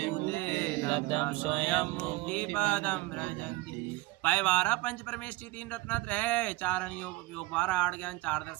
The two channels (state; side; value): quieter; left; 20.4 dB